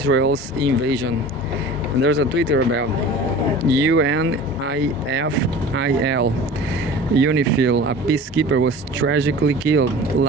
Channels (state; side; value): normal; both; correlation 0.40